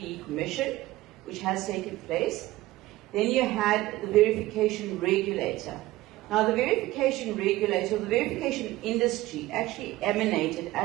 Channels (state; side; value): quieter; left; 17.4 dB